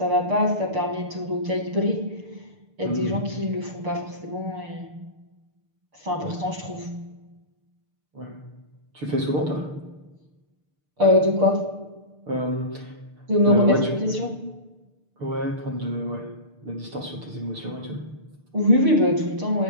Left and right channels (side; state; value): left; late; 6.7 ms